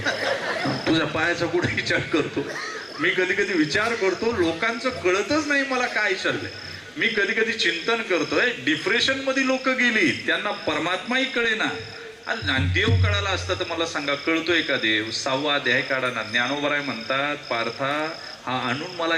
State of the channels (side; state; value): both; identical; correlation 1.00